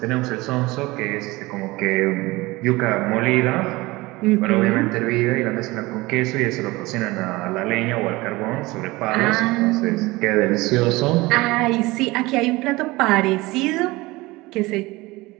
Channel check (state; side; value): quieter; left; 21.3 dB